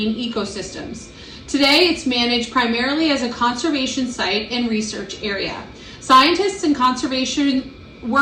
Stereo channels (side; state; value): both; identical; correlation 1.00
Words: ecosystems. Today, it's managed primarily as a conservation site and research area. Scientists and conservation